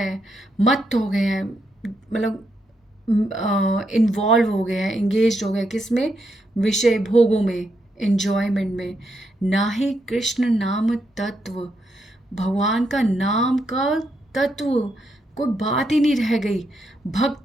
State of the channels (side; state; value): both; normal; correlation 0.80